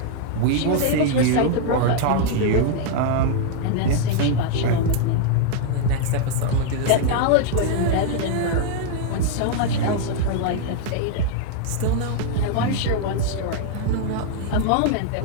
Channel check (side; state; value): both; different; correlation 0.00